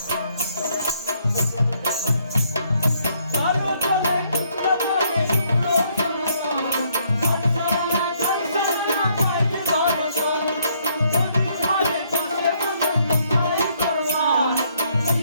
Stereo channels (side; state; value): both; inverted; correlation -0.69